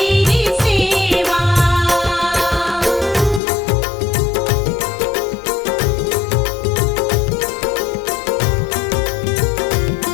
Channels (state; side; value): drops out; right; at 3.4 s